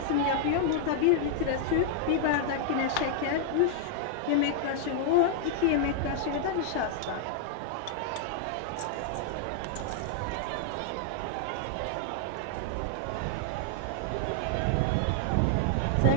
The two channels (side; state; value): both; different; correlation 0.00